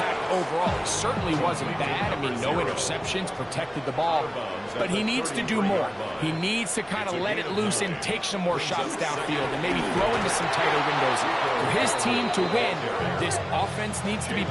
overall. He certainly wasn't bad. I mean, no interceptions, protected the ball. But he needs to do more. He needs to kind of let it loose and take some more shots downfield and maybe throw into some tighter windows. For his team to win, this offense needs to be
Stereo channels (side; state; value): both; identical; correlation 1.00